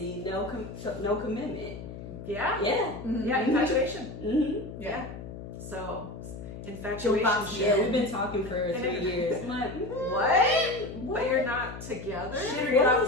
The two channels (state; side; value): noise; left; hum, 11 dB below the sound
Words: no commitment. yeah. Yeah. Yeah, infatuation. Mm-hmm. Yeah. So infatuation. Yeah, we've been talking for 3 years. I'm like, What? But you're not together? Shit, or get